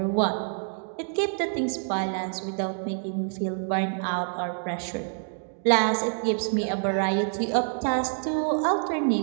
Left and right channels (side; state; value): left; silent; digital silence